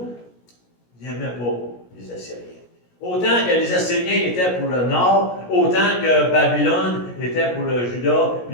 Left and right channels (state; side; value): late; right; 17 ms